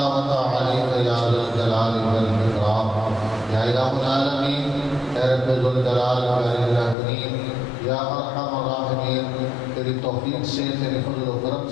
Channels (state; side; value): drops out; right; at 7.0 s